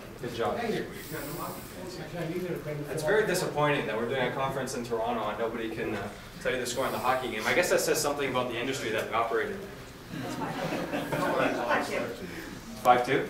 Good job. It's very disappointing that we're doing a conference in Toronto and nobody can tell you the score in the hockey game. I guess that says something about the industry that we operate in. 5-2?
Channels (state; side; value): identical; both; correlation 1.00